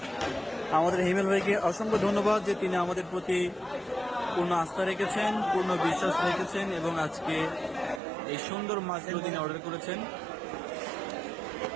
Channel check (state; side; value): drops out; left; at 8.0 s